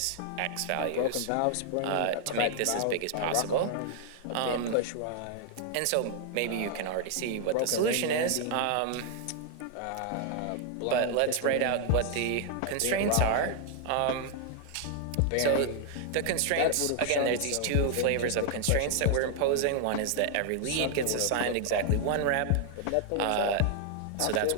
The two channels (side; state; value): both; different; correlation 0.00